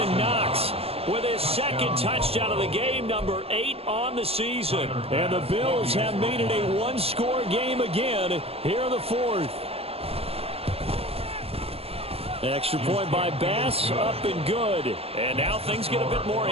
Knox with his second touchdown of the game, number 8 on the season. And the Bills have made it a one-score game again here in the 4th. Extra point by Bass, up and good. And now things get a bit more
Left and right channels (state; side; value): late; left; 0.28 ms